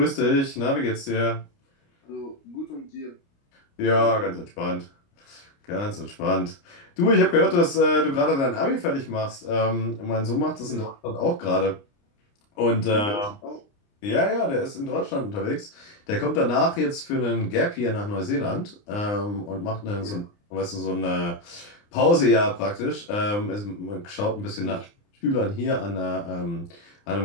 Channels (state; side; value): late; right; 29 ms